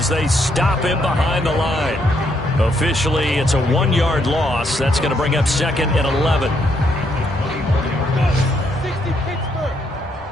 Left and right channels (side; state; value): both; normal; correlation 0.74